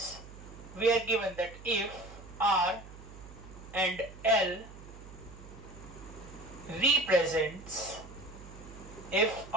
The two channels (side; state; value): right; noise; hum, 16 dB below the sound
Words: we are given that if R and L represents